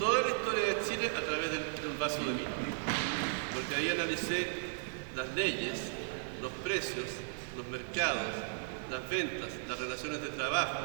la historia de Chile a través de un vaso de vino. Porque ahí analicé las leyes, los precios, los mercados, las ventas, las relaciones de trabajo,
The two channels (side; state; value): left; silent; digital silence